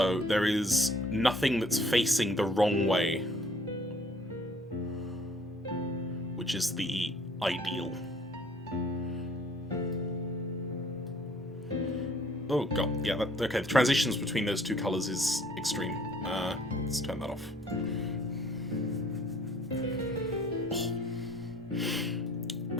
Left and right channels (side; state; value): both; normal; correlation 0.57